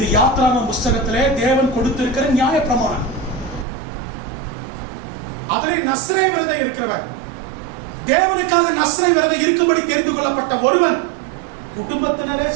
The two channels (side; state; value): left; drops out; at 3.7 s